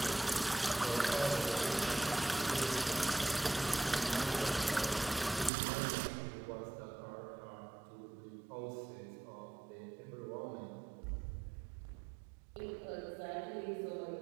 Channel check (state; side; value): drops out; left; at 5.5 s